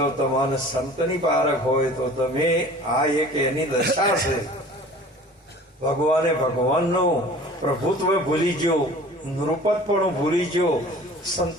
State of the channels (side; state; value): both; normal; correlation 0.45